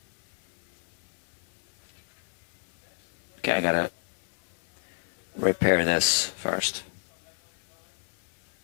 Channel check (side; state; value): right; silent; 58 dB below the other